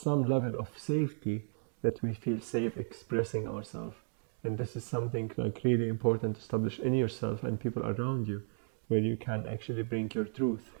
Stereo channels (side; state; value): left; silent; digital silence